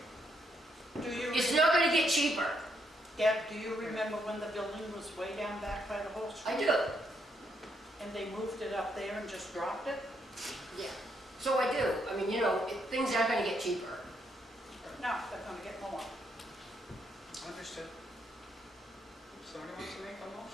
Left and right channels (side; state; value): both; normal; correlation 0.76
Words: Do you, it's not gonna get cheaper. Deb, do you remember when the building was way down back by the whole street? I do, And they moved it up there and just dropped it? yeah. So I do. I mean, you know, things aren't gonna get cheaper. No, they're gonna get more. Understood. Somebody wants to make a